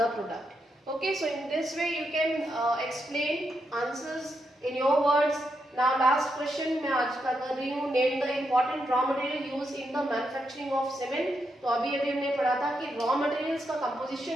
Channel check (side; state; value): both; normal; correlation 0.82